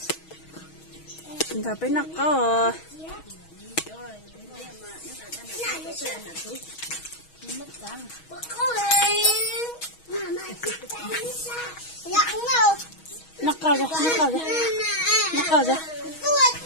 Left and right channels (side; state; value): right; late; 6.3 ms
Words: chúng ta phải nắc có nắc cao ra nắc cao ra nắc cao ra